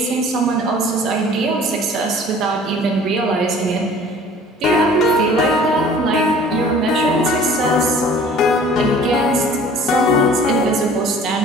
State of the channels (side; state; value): both; normal; correlation 0.49